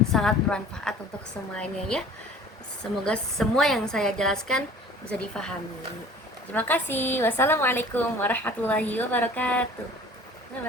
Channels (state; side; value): normal; both; correlation 0.46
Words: sangat bermanfaat untuk semuanya ya. Semoga semua yang saya jelaskan bisa difahami. Terima kasih. Wassalamualaikum warahmatullahi wabarakatuh. Bye